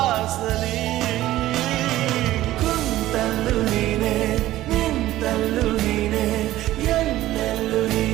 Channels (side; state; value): left; quieter; 15.1 dB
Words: ಕುಂತಲ್ಲು ನೀನೆ ನಿಂತಲ್ಲು ನೀನೆ ಎಲ್ಲೆಲ್ಲೂ